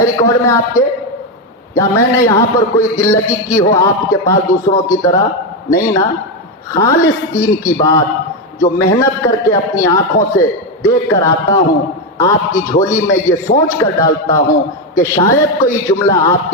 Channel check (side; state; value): both; normal; correlation 0.08